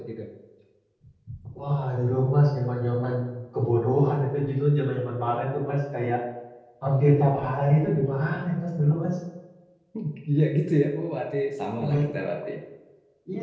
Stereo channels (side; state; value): both; identical; correlation 1.00